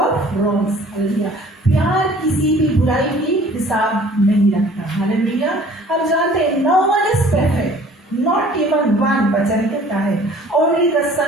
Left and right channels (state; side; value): normal; both; correlation 0.51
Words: wrongs, hallelujah. प्यार किसी भी बुराई की हिसाब नहीं रखता, हालेलुया। हम जानते हैं no one is perfect, not even one, वचन कहता है only the